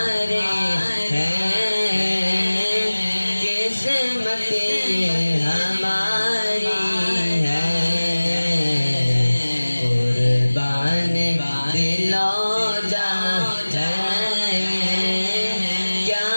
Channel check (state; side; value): inverted; both; correlation -1.00